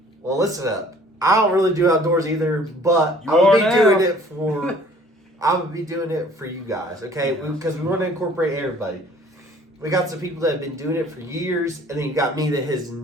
Well, listen up. I don't really do outdoors either, but I'm gonna be doing it for you guys, okay? Because we want to incorporate everybody. We got some people that have been doing it for years, and then you got me that has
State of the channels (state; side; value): normal; both; correlation 0.54